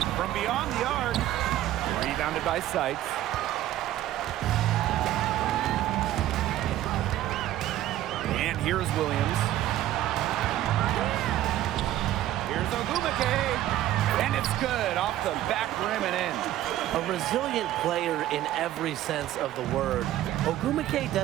From beyond the arc. Rebounded by Sykes. And here's Williams. Here's Ogumake. And it's good off the back rim and in. A resilient player in every sense of the word. Ogumake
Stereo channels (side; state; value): left; quieter; 13.6 dB